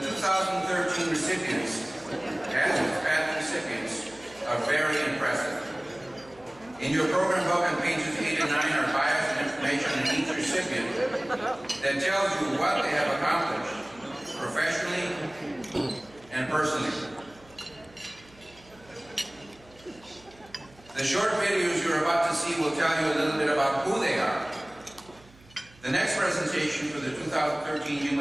recipients, as Hispanic recipients, are very impressive. In your program book on pages 8 and 9 are bios and information on each recipient that tells you what they have accomplished, professionally and personally. The short videos you're about to see will tell you a little bit about who they are. The next presentation for the 2013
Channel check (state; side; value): noise; right; hum, 26 dB below the sound